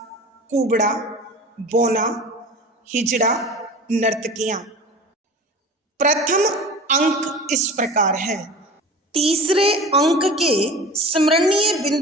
कुबड़ा, बोना, हिजड़ा, नर्तकियां। प्रथम अंक इस प्रकार है। तीसरे अंक के स्मरणीय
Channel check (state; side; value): normal; both; correlation 0.36